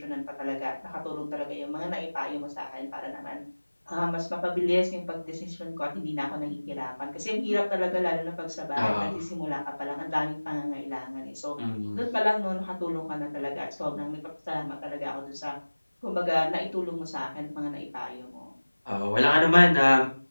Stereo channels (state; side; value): inverted; both; correlation -1.00